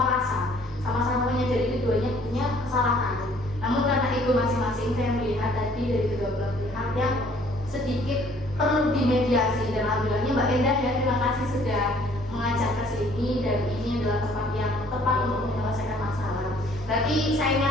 sama-sama menyadari keduanya punya kesalahan. Namun karena ego masing-masing, saya melihat tadi dari kedua belah pihak yang sedikit perlu dimediasi. Dan alhamdulillahnya Mbak Endah ya, terima kasih sudah mengajak ke sini, dan ini adalah tempat yang tepat untuk menyelesaikan masalah. Berarti saya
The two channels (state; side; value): normal; both; correlation 0.58